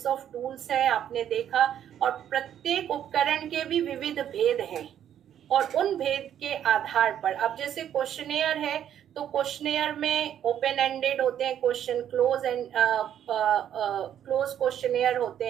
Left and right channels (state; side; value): quieter; left; 10.1 dB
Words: ऑफ टूल्स हैं, आपने देखा, और प्रत्येक उपकरण के भी विविध भेद हैं, और उन भेद के आधार पर अब जैसे क्वेश्चनेयर है तो क्वेश्चनेयर में ओपन एंडेड होते हैं question, close and close questionnaire होते